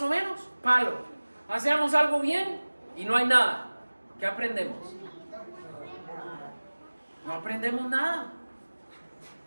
o menos, palo. Hacemos algo bien y no hay nada. ¿Qué aprendemos? No aprendemos nada.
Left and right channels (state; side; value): inverted; both; correlation -1.00